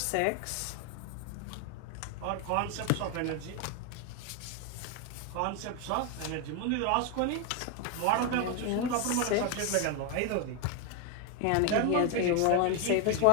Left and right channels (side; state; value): both; different; correlation 0.01